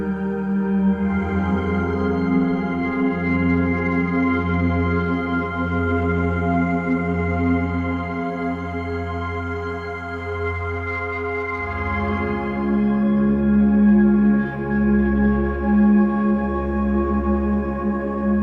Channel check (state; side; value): identical; both; correlation 1.00